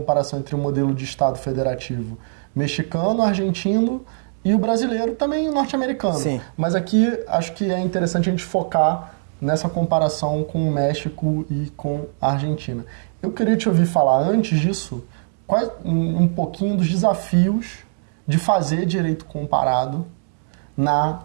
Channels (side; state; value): left; silent; digital silence